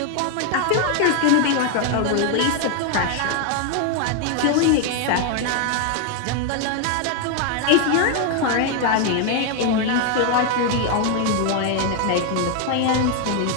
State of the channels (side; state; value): both; different; correlation 0.01